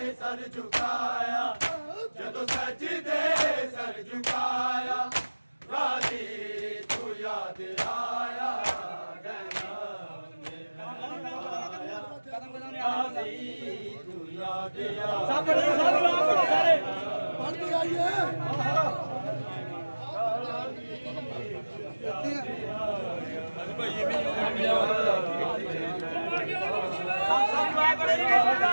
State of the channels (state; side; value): inverted; both; correlation -1.00